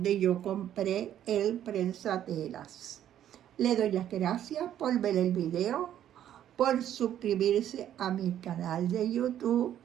yo compré el prensatelas. Le doy las gracias por ver el video, por suscribirse a mi canal de YouTube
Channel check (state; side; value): quieter; left; 11.0 dB